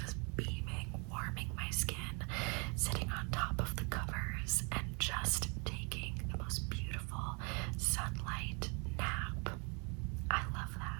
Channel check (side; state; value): left; quieter; 33.5 dB